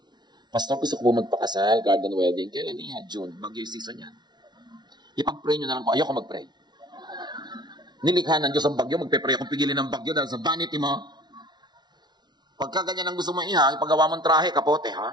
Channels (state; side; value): late; left; 0.20 ms